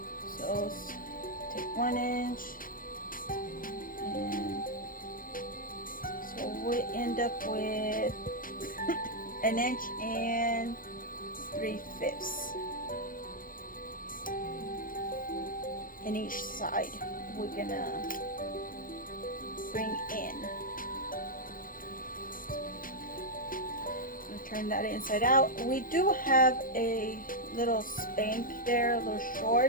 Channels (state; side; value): late; right; 0.40 ms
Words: So take 1 inch, and so we end up with 1 inch and 3/5 in each side. We're gonna bring in. Turn that inside out. We do have a little spank there, little